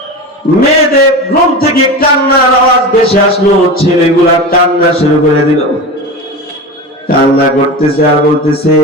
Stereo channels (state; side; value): normal; both; correlation 0.27